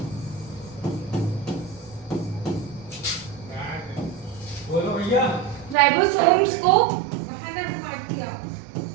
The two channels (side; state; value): left; drops out; at 5.8 s